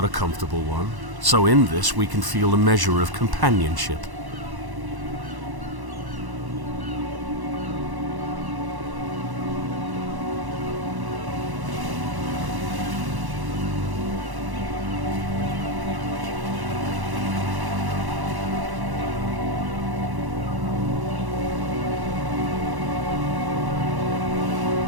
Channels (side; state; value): left; late; 1.1 ms